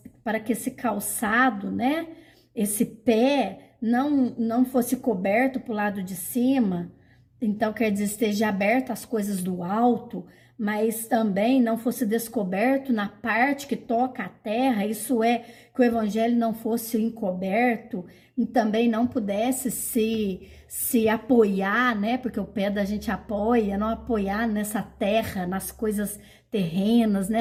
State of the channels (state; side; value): identical; both; correlation 1.00